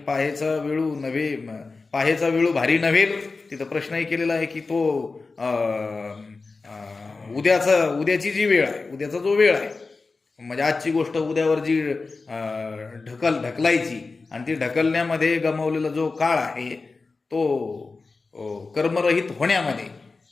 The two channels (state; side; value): quieter; right; 4.0 dB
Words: वेळू भारी नव्हेल, तिथं प्रश्नही केलेला आहे की तो उद्याची जी वेळ आहे, उद्याचा जो वेळ आहे, म्हणजे आजची गोष्ट उद्यावर जी ढकलायची आणि ती ढकलण्यामध्ये गमावलेला जो काळ आहे तो कर्मरहित होण्यामध्ये